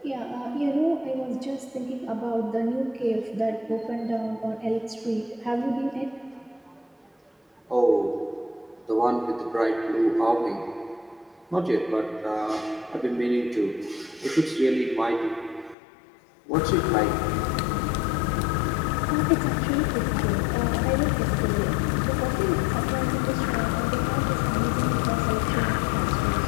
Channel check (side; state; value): right; drops out; at 15.8 s